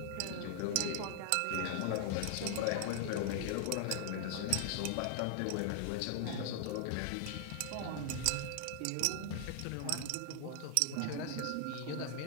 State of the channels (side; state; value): both; different; correlation 0.00